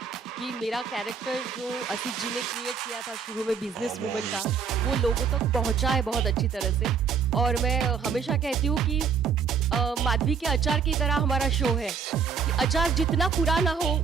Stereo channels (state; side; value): quieter; left; 6.3 dB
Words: कि मेरा कैरेक्टर जो असित जी ने क्रिएट किया था शुरू में बिजनेस वूमन का, वो लोगों तक पहुंचा है बहुत अच्छी तरह से. और मैं हमेशा कहती हूँ कि माधवी के अचार की तरह हमारा शो है कि अचार जितना पुराना हो